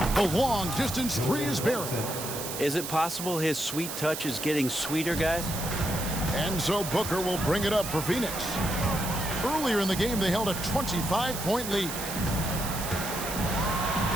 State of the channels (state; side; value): noise; right; hiss, 6 dB below the sound